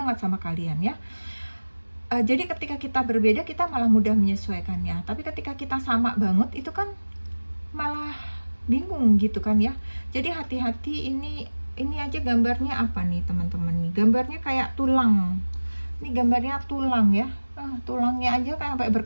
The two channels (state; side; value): inverted; both; correlation -1.00